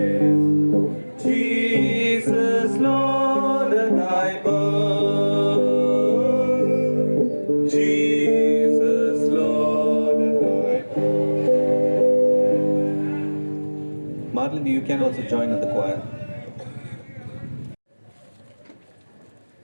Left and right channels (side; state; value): both; inverted; correlation -1.00